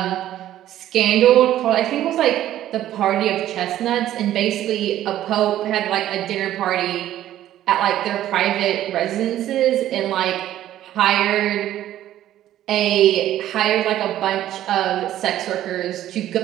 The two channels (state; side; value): quieter; left; 12.8 dB